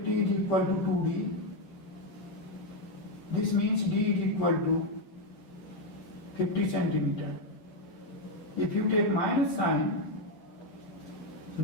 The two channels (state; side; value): late; right; 11 ms